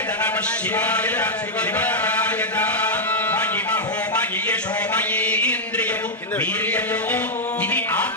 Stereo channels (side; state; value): both; normal; correlation -0.03